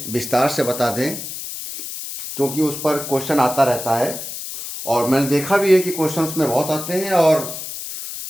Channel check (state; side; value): noise; left; hiss, 8 dB below the sound